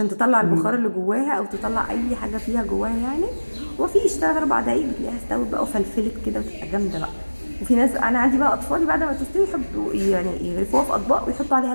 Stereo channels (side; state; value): both; inverted; correlation -1.00